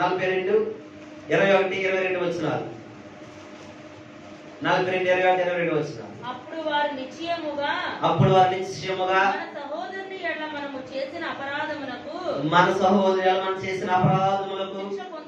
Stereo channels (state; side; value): identical; both; correlation 1.00